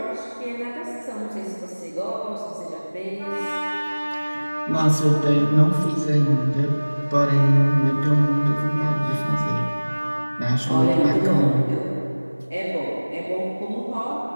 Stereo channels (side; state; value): both; inverted; correlation -1.00